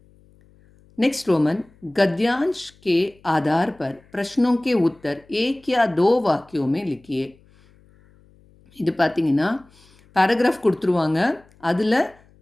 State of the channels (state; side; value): noise; left; hum, 30 dB below the sound